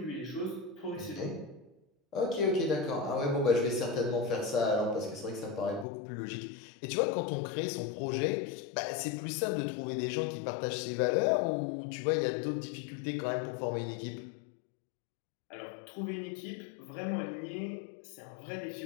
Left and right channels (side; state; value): right; drops out; at 5.9 s